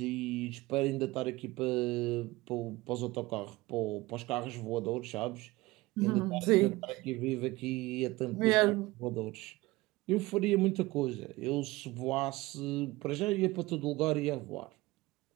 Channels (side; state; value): left; quieter; 20.2 dB